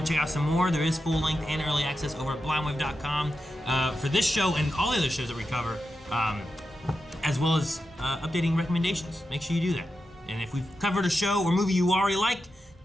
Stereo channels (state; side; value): normal; both; correlation 0.90